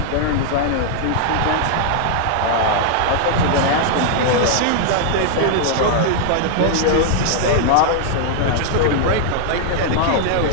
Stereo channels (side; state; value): both; different; correlation 0.00